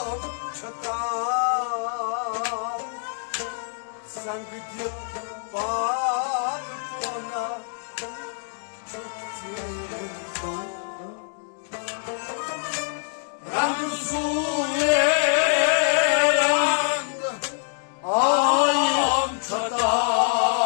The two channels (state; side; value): silent; right; digital silence